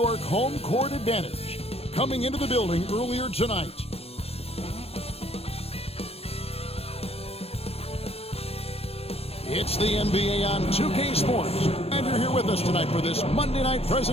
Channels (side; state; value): right; late; 0.29 ms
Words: home court advantage. Coming into the building earlier tonight. It's the NBA on 2K Sports, and you're here with us tonight for this Monday night